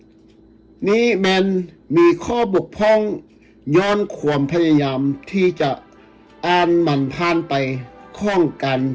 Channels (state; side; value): identical; both; correlation 1.00